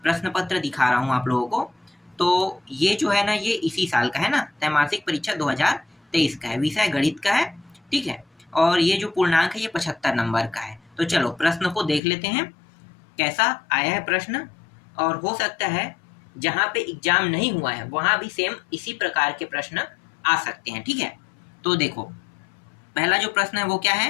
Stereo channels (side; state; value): right; drops out; at 12.0 s